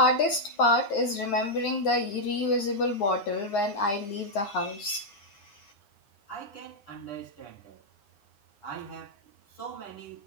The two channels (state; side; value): late; right; 10 ms